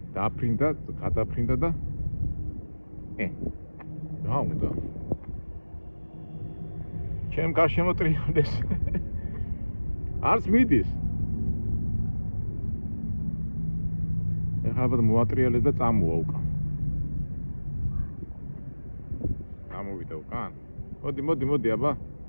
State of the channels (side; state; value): both; inverted; correlation -1.00